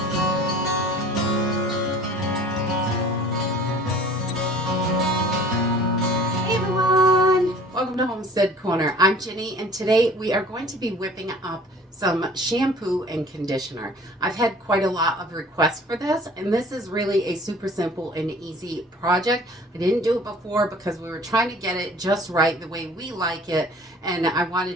Hey everyone! Welcome to Homestead Corner. I'm Ginny, and today we are going to be whipping up some shampoo and conditioner. I've had quite a lot of requests for this, and this is really a super simple and easy project. I didn't do it before because we were trying to get it just right the way we like it, and I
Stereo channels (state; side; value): normal; both; correlation 0.49